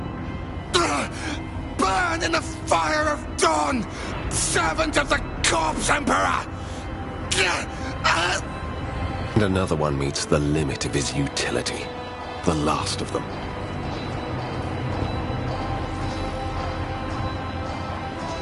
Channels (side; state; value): both; identical; correlation 1.00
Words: Burn in the fire of dawn! Servant of the Corpse Emperor! And another one meets the limit of his utility. The last of them.